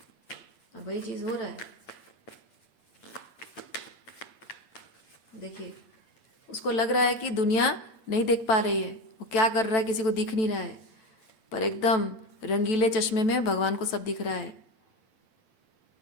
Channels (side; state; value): right; late; 9.1 ms